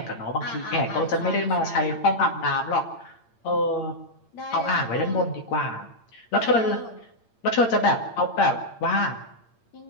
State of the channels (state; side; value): late; right; 8.8 ms